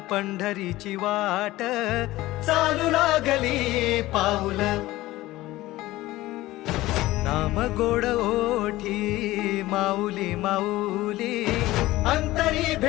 पंढरीची वाट चालू लागली पाऊल नाम गोड ओठी माऊली माऊली अंतरी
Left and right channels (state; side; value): quieter; right; 17.4 dB